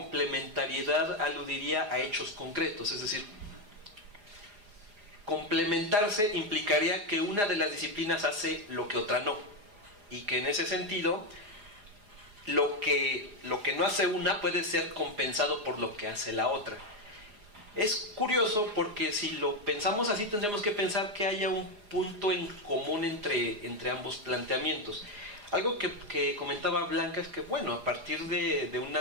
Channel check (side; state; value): left; late; 4.9 ms